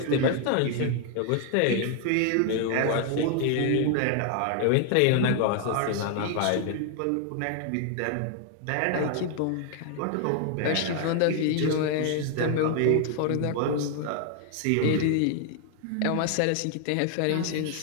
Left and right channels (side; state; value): both; different; correlation 0.00